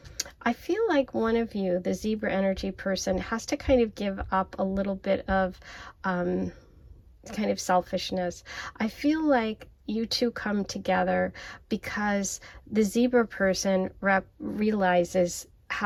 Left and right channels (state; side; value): identical; both; correlation 1.00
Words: I feel like one of you, the Zebra energy person, has to kind of give up a little bit of kind of selfishness. I feel like you two come together because the Zebra person realizes